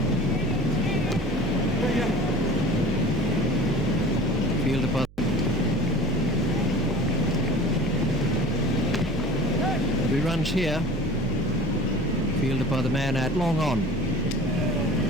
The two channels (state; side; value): noise; right; hum, 24 dB below the sound